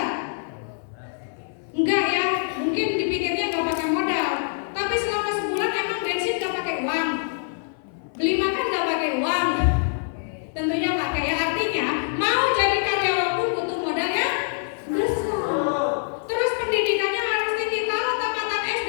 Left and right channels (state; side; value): silent; right; 59 dB below the other